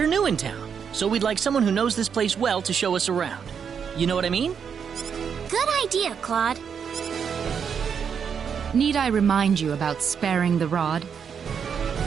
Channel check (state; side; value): quieter; left; 7.1 dB